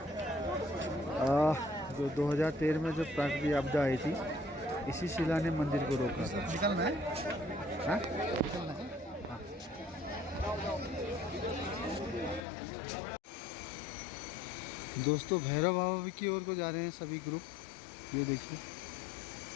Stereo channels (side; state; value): right; drops out; at 12.5 s